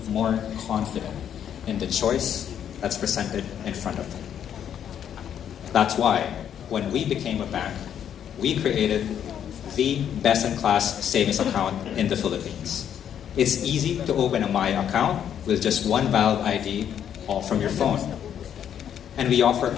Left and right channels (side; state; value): right; quieter; 9.3 dB